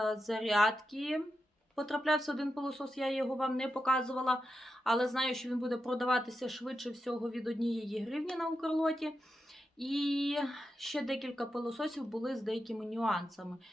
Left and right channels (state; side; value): normal; both; correlation 0.88